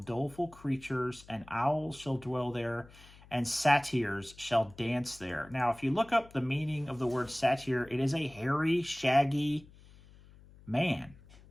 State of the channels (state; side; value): noise; left; hum, 23 dB below the sound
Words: doleful creatures, and owls shall dwell there, and satyrs shall dance there. Now, if you look up the meaning of the word satyr, it is a hairy, shaggy man,